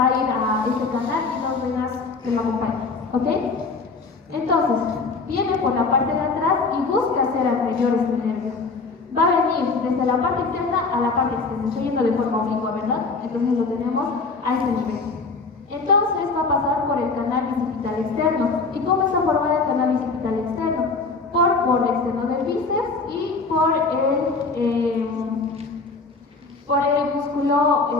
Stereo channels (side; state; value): right; quieter; 4.1 dB